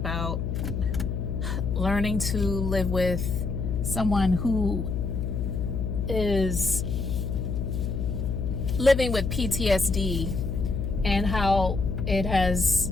learning to live with someone who is living with PTSD and how it has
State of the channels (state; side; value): noise; left; hum, 2 dB below the sound